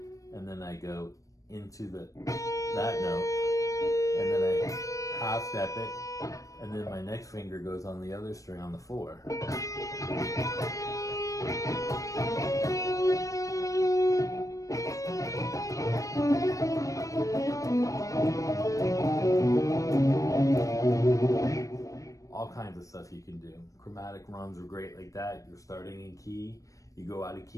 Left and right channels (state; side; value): late; right; 0.16 ms